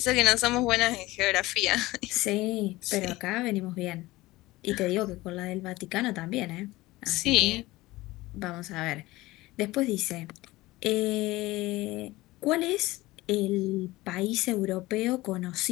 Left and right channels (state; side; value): quieter; right; 19.2 dB